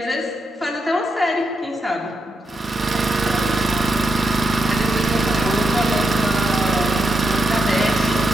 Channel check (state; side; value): normal; both; correlation 0.84